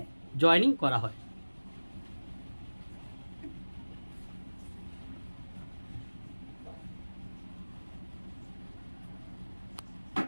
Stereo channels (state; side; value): inverted; both; correlation -1.00